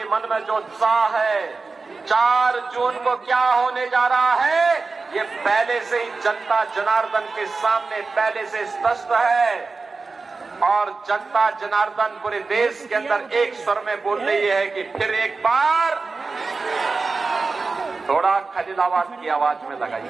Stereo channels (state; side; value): quieter; left; 4.1 dB